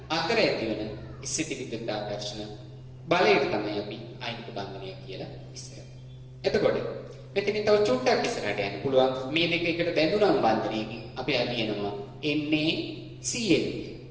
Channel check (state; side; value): identical; both; correlation 1.00